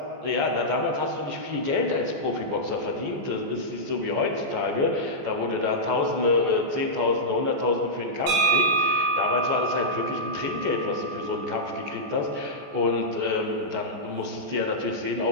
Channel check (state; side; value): late; left; 14 ms